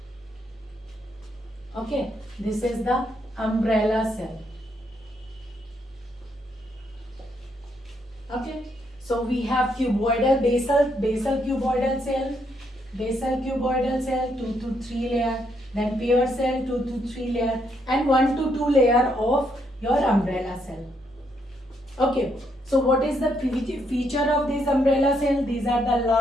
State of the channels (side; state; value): both; normal; correlation 0.75